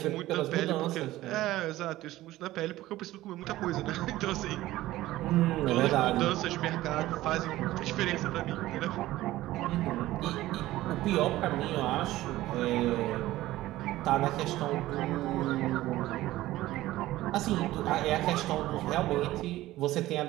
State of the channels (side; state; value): left; quieter; 16.2 dB